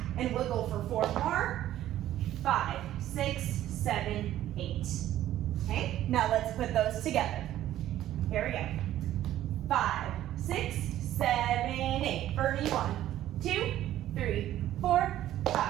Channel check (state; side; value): quieter; left; 13.0 dB